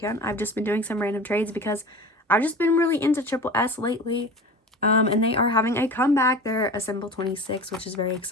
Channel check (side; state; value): both; normal; correlation 0.35